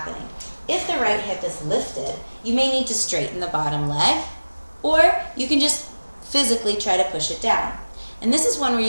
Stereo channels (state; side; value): inverted; both; correlation -1.00